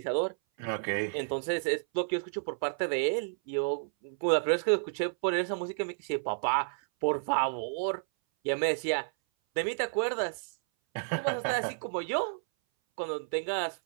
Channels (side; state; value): left; silent; 57 dB below the other